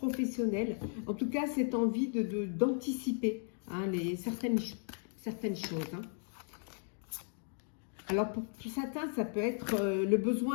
En tout cas, cette envie d'anticiper certaines choses. Alors pour certains, ça peut être le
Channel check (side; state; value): right; silent; 54 dB below the other